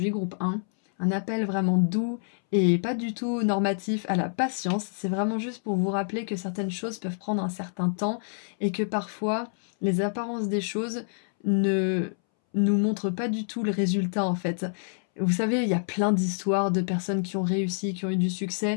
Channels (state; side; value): silent; right; 60 dB below the other